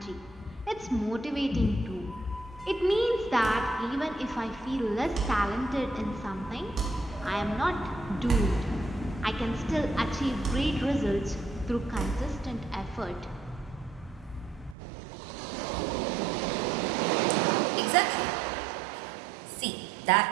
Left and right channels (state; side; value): drops out; left; at 14.8 s